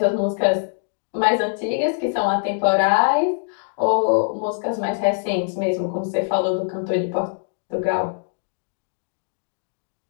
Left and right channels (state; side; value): silent; right; digital silence